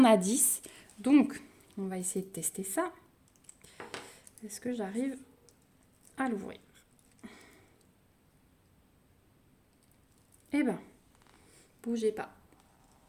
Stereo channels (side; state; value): both; identical; correlation 1.00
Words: a 10. Donc, on va essayer de tester ça. Est-ce que j'arrive à l'ouvrir? Eh ben, bougez pas.